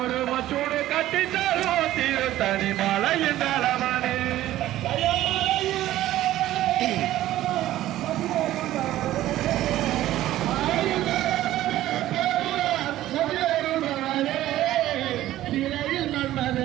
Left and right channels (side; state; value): left; quieter; 14.3 dB